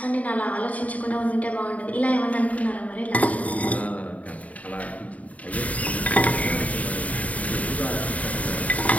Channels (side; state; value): right; late; 0.070 ms